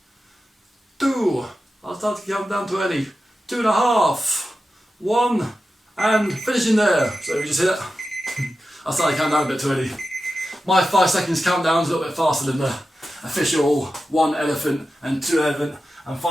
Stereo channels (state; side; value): normal; both; correlation 0.92